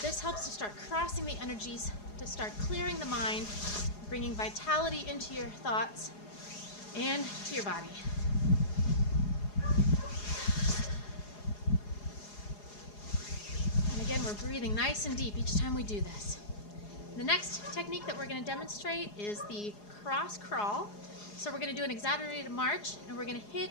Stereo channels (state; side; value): late; right; 4.8 ms